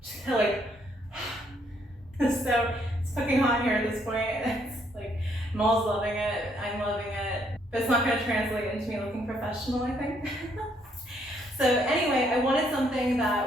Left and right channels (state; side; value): normal; both; correlation 0.70